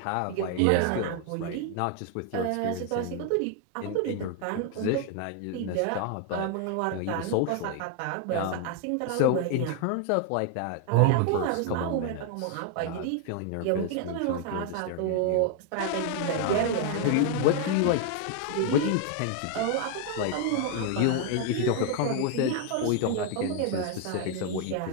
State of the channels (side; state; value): both; different; correlation 0.00